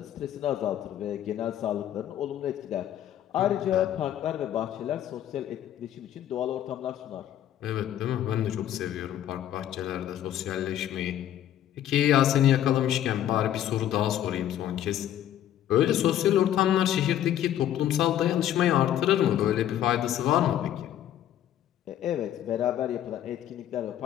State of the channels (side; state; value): right; quieter; 11.4 dB